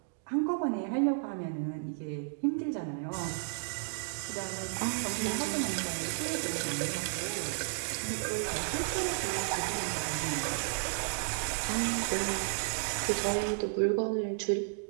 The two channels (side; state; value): left; silent; digital silence